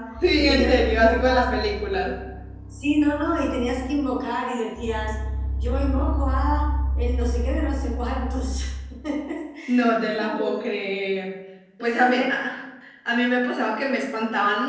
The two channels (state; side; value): identical; both; correlation 1.00